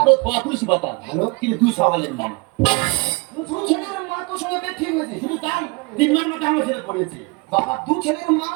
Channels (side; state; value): left; quieter; 28.0 dB